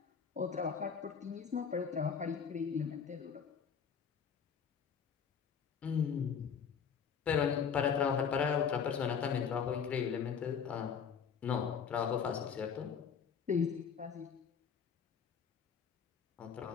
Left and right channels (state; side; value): quieter; right; 6.9 dB